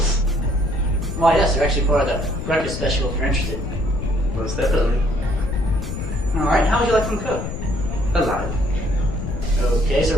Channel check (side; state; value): left; noise; rumble, 6 dB below the sound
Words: Why, yes, they're actually part of the breakfast special if you're interested. Most definitely. Alright, how would you like them cooked? Alive. Okay,